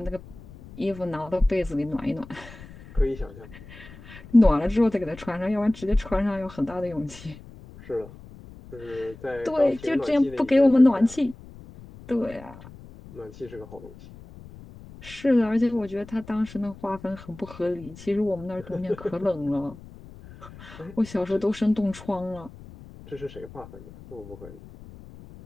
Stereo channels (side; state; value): left; noise; rumble, 18 dB below the sound